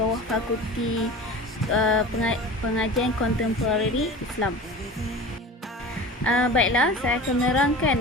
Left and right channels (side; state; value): both; normal; correlation 0.36